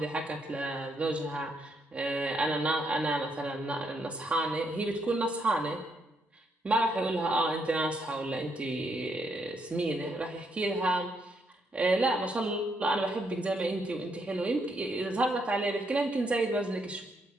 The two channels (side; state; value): both; normal; correlation 0.76